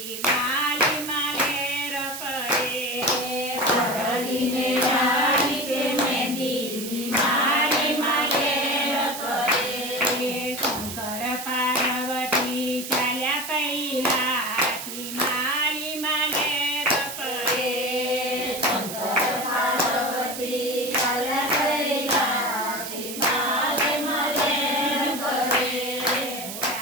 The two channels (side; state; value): right; noise; hiss, 8 dB below the sound